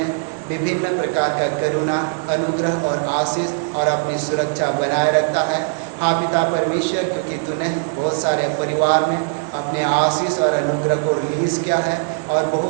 विभिन्न प्रकार का करुणा, अनुग्रह और आशीष और अपनी सुरक्षा बनाए रखता है। हाँ पिता परमेश्वर, क्योंकि तूने बहुत सारे परिवार में अपने आशीष और अनुग्रह को रिलीज़ किया है और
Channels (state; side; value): silent; left; 60 dB below the other